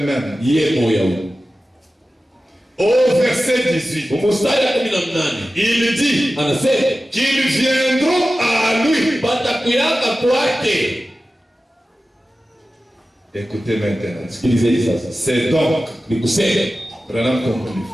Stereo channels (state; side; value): normal; both; correlation 0.94